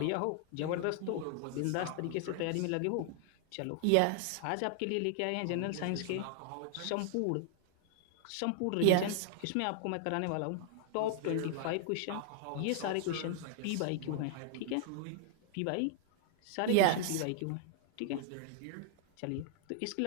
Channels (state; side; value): different; both; correlation 0.00